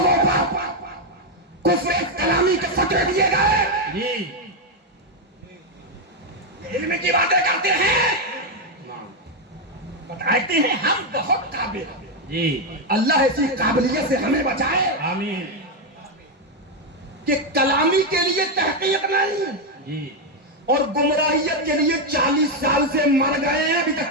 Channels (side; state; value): both; normal; correlation 0.04